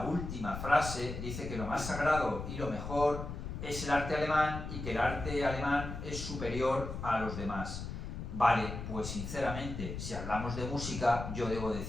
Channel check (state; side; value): noise; left; rumble, 7 dB below the sound